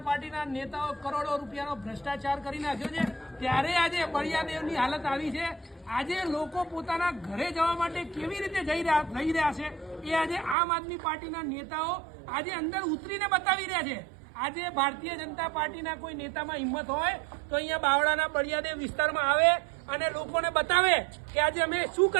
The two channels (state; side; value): drops out; left; at 10.6 s